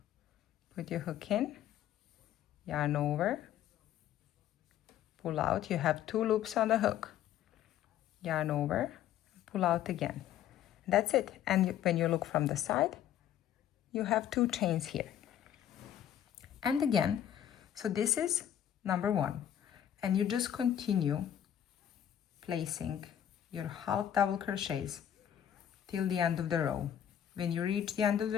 put your hook in, yarn over, pull out. You have 2 loops on the hook, yarn over, pull out again. That's it. And when you look from the side, you have 2 chains here. And again, so this is number 1, and you just continue placing your half double crochets till the end of the row. When you reach the end of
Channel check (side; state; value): right; quieter; 10.5 dB